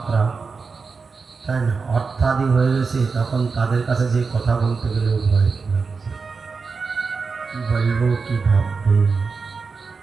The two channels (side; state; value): left; quieter; 4.8 dB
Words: তাই না? অর্থাদি হয়ে গেছে, তখন তাদের কাছে যে কথা বলতে গেলেও ভয় লাগছে, কি বলবো কি ভাববে,